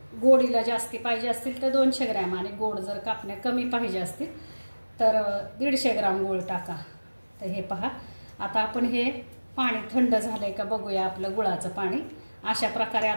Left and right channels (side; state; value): both; inverted; correlation -1.00